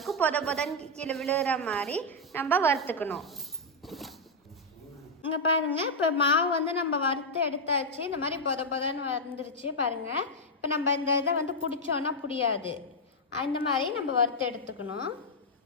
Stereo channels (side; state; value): both; normal; correlation -0.02